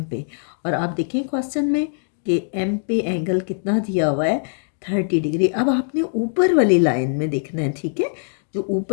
पे। और आप देखें क्वेश्चन में कि एम पे एंगल कितना दिया हुआ है 30 डिग्री। अब आपने ऊपर वाली लाइन में देखना है। ठीक है, जो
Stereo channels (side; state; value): right; silent; 64 dB below the other